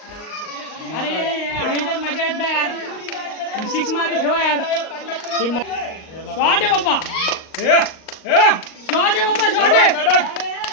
अरे मजा येत नाही यार. 6 मारे ठेवा यार. शॉट आहे बाप्पा. शॉट आहे.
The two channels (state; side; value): late; right; 38 ms